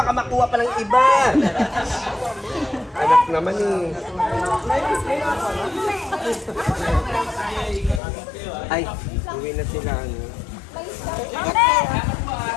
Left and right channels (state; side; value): drops out; right; at 8.0 s